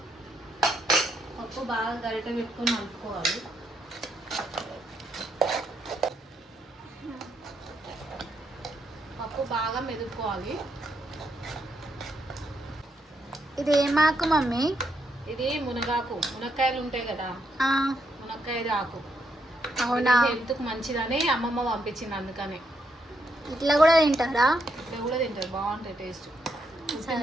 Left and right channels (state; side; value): normal; both; correlation 0.78